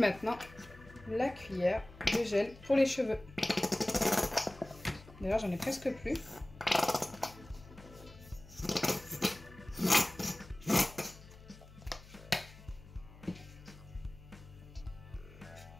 la cuillère de gel pour les cheveux. D'ailleurs, j'en ai presque plus.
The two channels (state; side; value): noise; left; hum, 19 dB below the sound